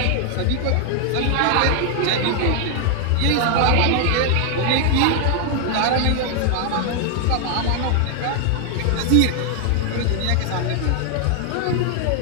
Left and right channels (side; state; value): both; different; correlation 0.00